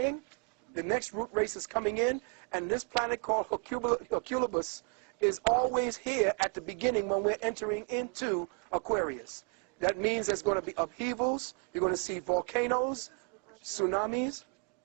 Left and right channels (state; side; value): quieter; left; 38.7 dB